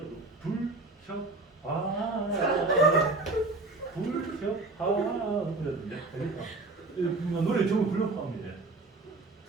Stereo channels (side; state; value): left; quieter; 3.2 dB